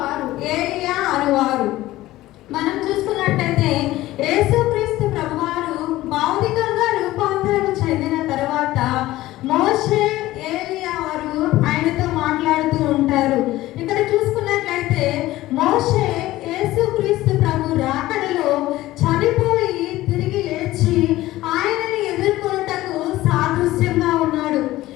ఏలియా అనువారు. మనం చూసుకున్నట్టయితే యేసుక్రీస్తు ప్రభువారు భౌతికంగా రూపాంతరం చెందిన తర్వాత మోషే ఏలియా వారు ఆయనతో మాట్లాడుతూ ఉంటారు. ఇక్కడ చూసుకున్నట్లయితే మోషే యేసుక్రీస్తు ప్రభు రాకడలో చనిపోయి తిరిగి లేచి ఆయనని ఎదుర్కొనుటకు సాదృశ్యంగా ఉన్నాడు.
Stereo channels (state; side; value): quieter; right; 16.5 dB